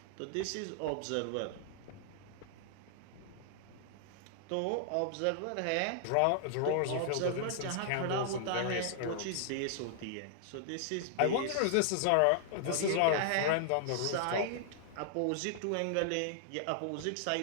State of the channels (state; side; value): different; both; correlation -0.01